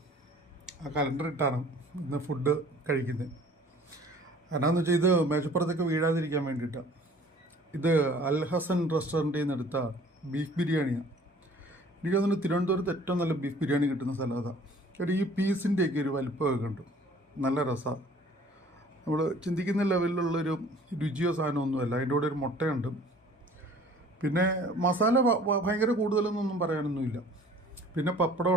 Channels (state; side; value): normal; both; correlation 0.51